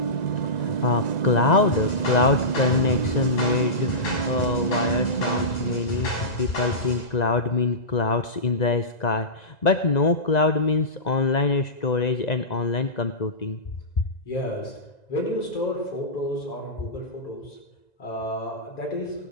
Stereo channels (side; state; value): right; late; 1.9 ms